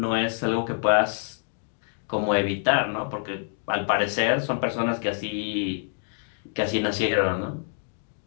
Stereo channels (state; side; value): silent; right; 58 dB below the other